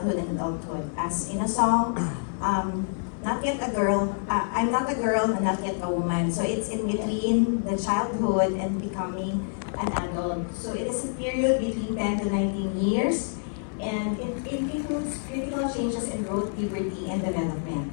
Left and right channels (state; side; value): silent; right; digital silence